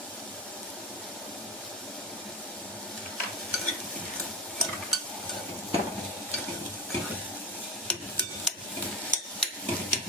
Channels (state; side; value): normal; both; correlation 0.25